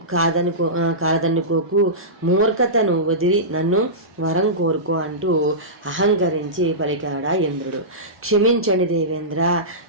కాదనుకోకు. మూర్ఖతను వదిలి నన్ను వరం కోరుకో అంటూ అహంకరించి పలికాడా ఇంద్రుడు. క్షమించండి దేవేంద్ర,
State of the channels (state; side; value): normal; both; correlation -0.18